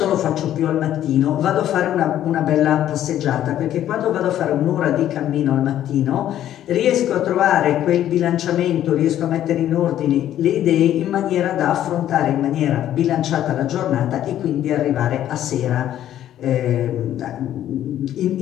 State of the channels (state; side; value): quieter; right; 11.7 dB